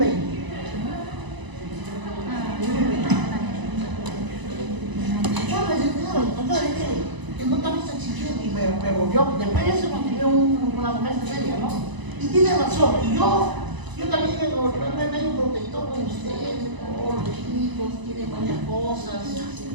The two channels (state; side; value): late; left; 1.0 ms